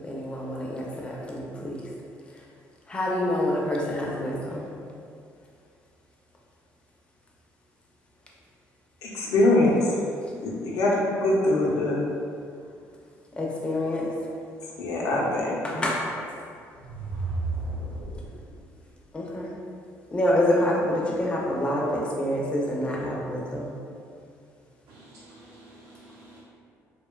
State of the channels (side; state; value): both; normal; correlation 0.68